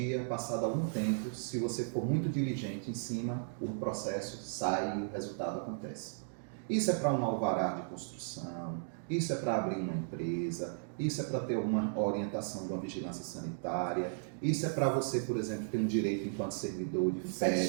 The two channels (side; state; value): left; silent; digital silence